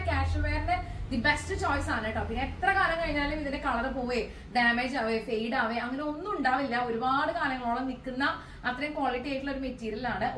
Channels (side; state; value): both; identical; correlation 1.00